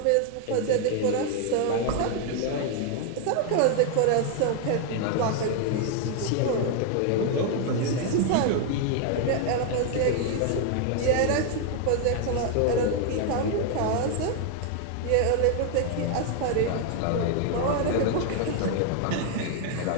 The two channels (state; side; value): different; both; correlation 0.00